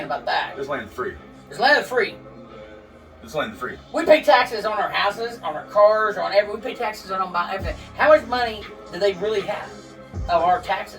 about that. This land is free. This land is free. This land is free. We pay taxes on our houses, on our cars, on everything. We pay taxes on everything. How much money do they really have of our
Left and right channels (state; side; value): identical; both; correlation 1.00